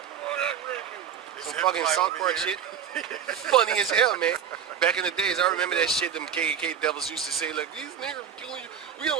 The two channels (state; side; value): quieter; left; 8.4 dB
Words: Some fucking South Park shit. Funny as hell, man. Back in the days, I remember that shit them KKK devils used to say, like, these niggers are killing you. We